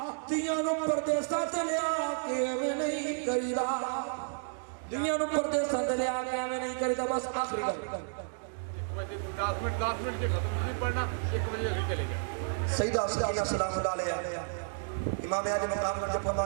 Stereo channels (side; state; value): left; silent; digital silence